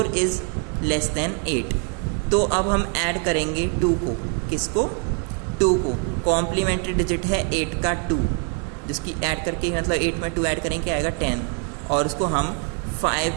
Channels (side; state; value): left; quieter; 34.7 dB